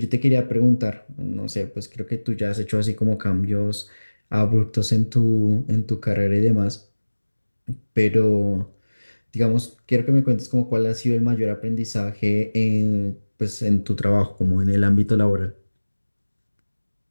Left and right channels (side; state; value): both; inverted; correlation -1.00